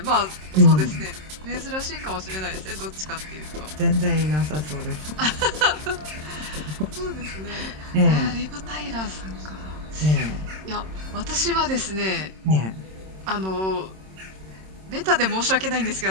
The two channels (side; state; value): left; late; 26 ms